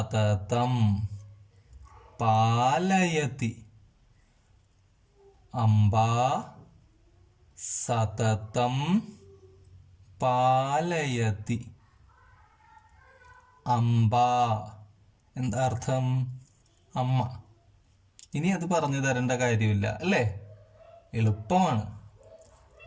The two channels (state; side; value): identical; both; correlation 1.00